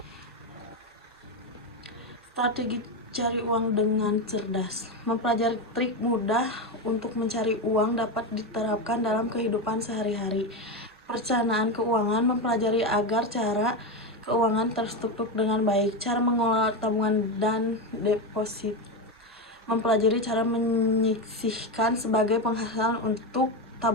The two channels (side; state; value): both; normal; correlation 0.13